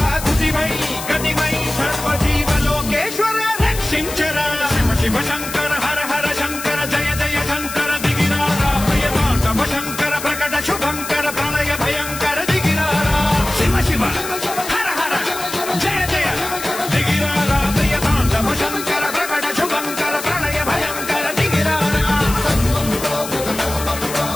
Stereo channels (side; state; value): left; noise; hiss, 9 dB below the sound